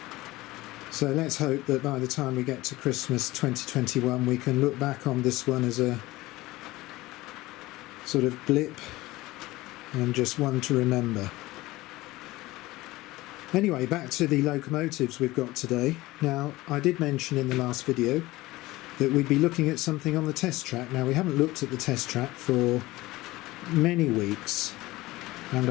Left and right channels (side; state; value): right; quieter; 19.0 dB